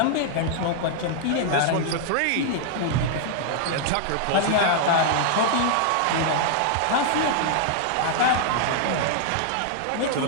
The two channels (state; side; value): different; both; correlation -0.01